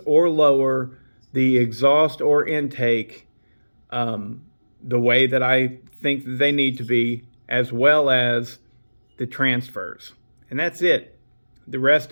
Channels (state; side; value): inverted; both; correlation -1.00